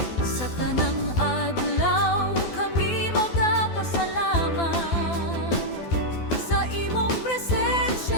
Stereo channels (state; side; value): late; right; 12 ms